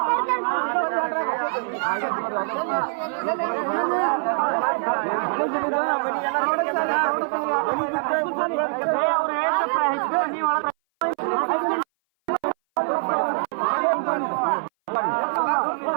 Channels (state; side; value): silent; left; 58 dB below the other